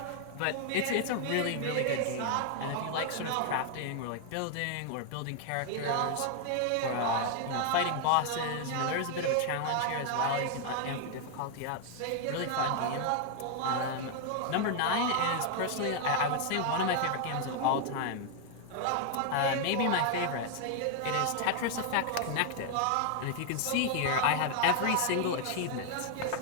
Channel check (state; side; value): different; both; correlation 0.00